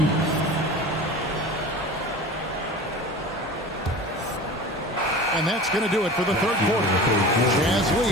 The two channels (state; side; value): normal; both; correlation 0.36